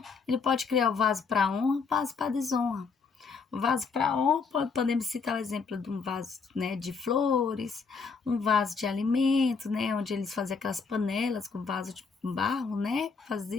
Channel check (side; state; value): right; quieter; 5.1 dB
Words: Ele pode criar o vaso para honra, o vaso para desonra. O vaso para honra, podemos citar o exemplo de um vaso, né, de flores, um vaso de alimento, né, onde eles faziam aquelas panelas com vaso de barro, né,